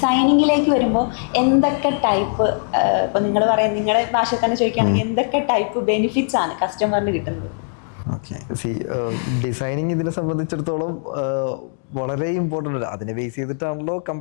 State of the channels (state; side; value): silent; right; digital silence